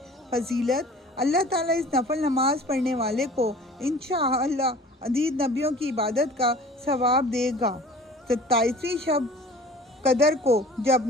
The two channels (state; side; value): normal; both; correlation 0.45